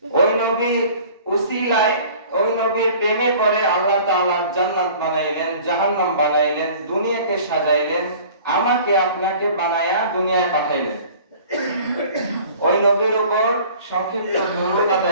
ওই নবী উসিলায় ওই নবীর প্রেমে পড়ে আল্লাহ তাআলা জান্নাত বানাইলেন, জাহান্নাম বানাইলেন, দুনিয়াকে সাজাইলেন, আমাকে আপনাকে বানায়া দুনিয়ায় পাঠাইলেন। ওই নবীর উপর সংক্ষিপ্ত দরুদ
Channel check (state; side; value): inverted; both; correlation -0.48